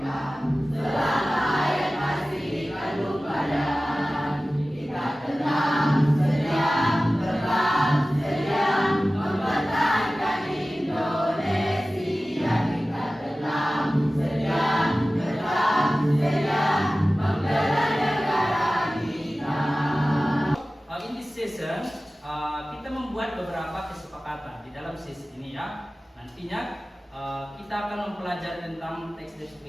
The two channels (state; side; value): normal; both; correlation 0.96